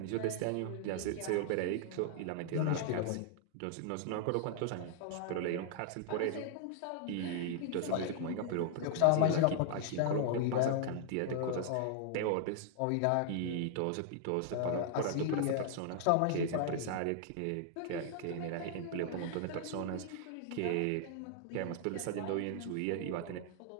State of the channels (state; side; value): different; both; correlation 0.00